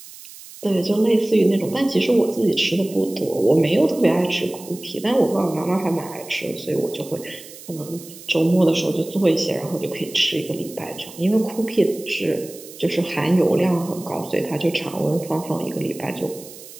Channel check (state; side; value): noise; right; hiss, 17 dB below the sound